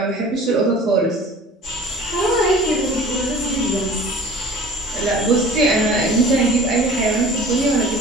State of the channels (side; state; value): both; normal; correlation 0.44